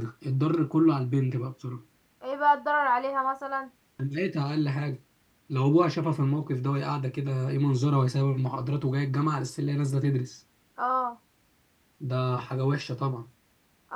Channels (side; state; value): both; identical; correlation 1.00